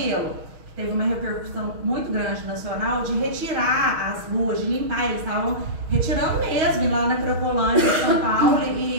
Teve uma repercussão muito grande nacional de retirar as ruas, de limpar. Eles estavam retirando mesmo lá na Cracolândia de São Paulo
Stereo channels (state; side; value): late; left; 6.3 ms